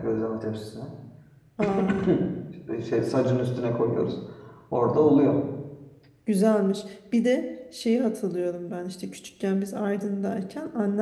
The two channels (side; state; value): both; identical; correlation 1.00